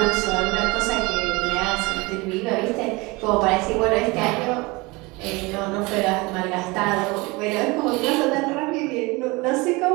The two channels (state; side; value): quieter; left; 24.5 dB